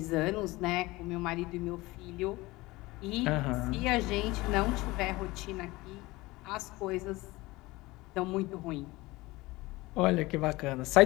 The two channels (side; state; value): right; quieter; 20.7 dB